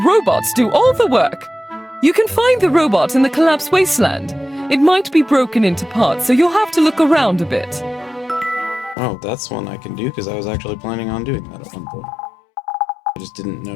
robots do all the work. You can find the robot in the collapsed wasteland. It might be broken into parts, so you'll have to look around a bit. Oh, that's one I can do, because I was actually planning on doing that at one point. I just didn't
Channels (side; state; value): right; drops out; at 9.0 s